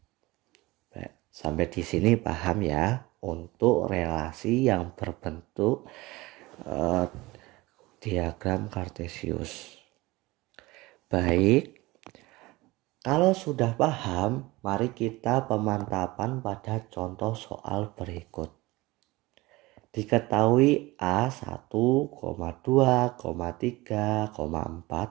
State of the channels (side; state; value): left; quieter; 21.0 dB